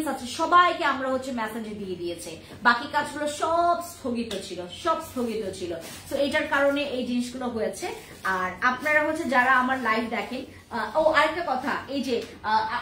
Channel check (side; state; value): both; identical; correlation 1.00